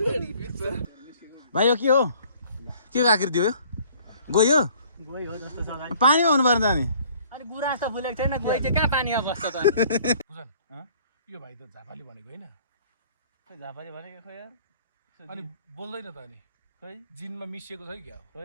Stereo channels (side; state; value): both; inverted; correlation -0.56